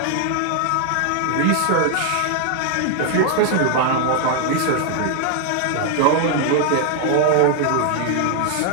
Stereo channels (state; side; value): different; both; correlation 0.00